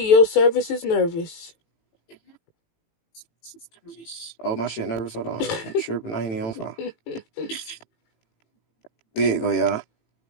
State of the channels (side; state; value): right; late; 18 ms